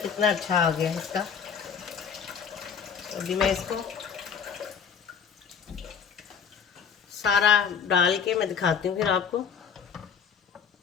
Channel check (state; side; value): quieter; right; 6.9 dB